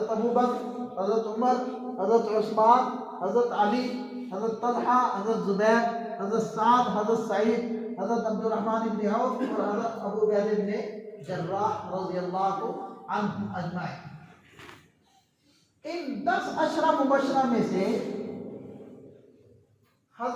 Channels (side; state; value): both; identical; correlation 1.00